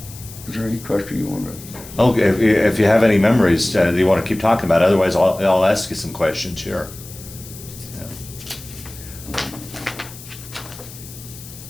Is there any question you want to? Okay. If you have any memories that you want to keep talking about, otherwise I'll ask you some questions here.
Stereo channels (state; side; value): noise; left; hiss, 16 dB below the sound